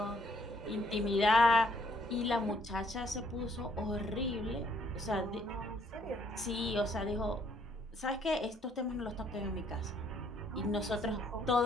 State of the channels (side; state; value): both; normal; correlation 0.67